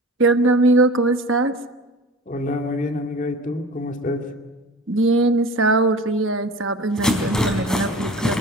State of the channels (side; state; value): both; normal; correlation 0.38